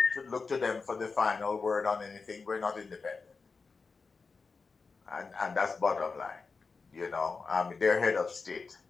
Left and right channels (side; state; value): right; quieter; 4.6 dB